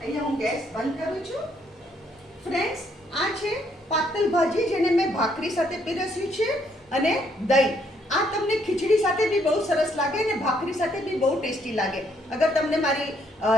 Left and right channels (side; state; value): both; normal; correlation 0.70